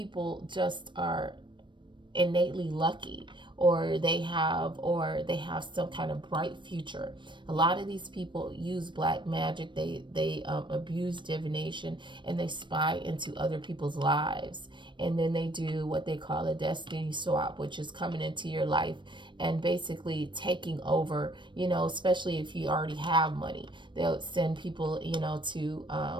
just are innately lucky, or they have some kind of bright future. A lot of these people use black magic. They abuse divination, and they spy into other people's lives, and then they do what they call a destiny swap, which is coming into your life and basically taking over. Especially if you already have money, they'll send people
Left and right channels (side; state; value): left; late; 0.23 ms